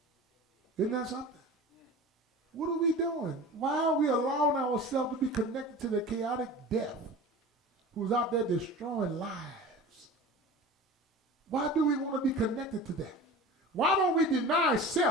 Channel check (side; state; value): both; normal; correlation 0.36